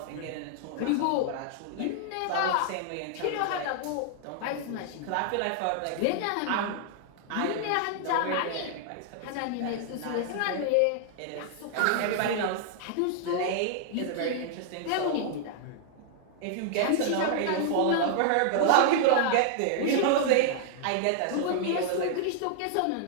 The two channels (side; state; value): both; different; correlation -0.01